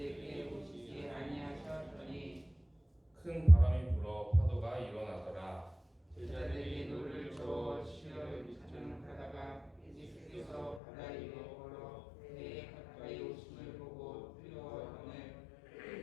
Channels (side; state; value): right; drops out; at 10.8 s